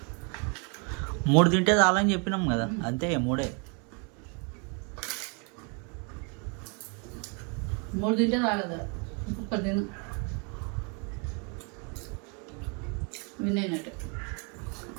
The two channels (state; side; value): quieter; left; 35.1 dB